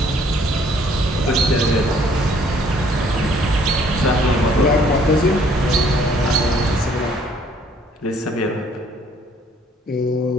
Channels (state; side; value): normal; both; correlation 0.61